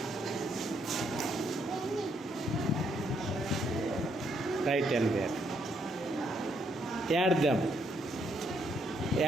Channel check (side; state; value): both; normal; correlation 0.73